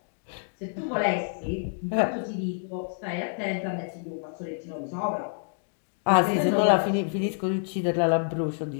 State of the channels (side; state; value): right; silent; digital silence